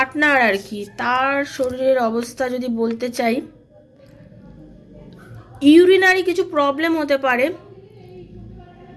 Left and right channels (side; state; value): both; identical; correlation 1.00